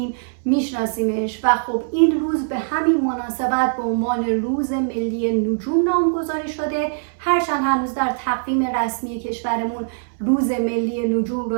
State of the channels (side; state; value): left; silent; 65 dB below the other